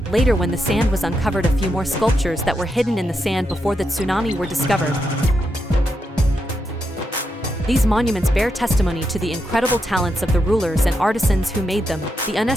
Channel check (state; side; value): normal; both; correlation 0.83